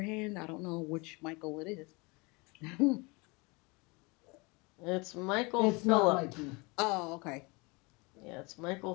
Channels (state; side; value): quieter; right; 27.4 dB